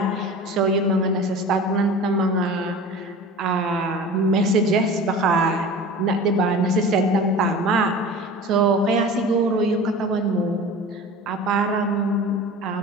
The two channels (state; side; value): normal; both; correlation 0.37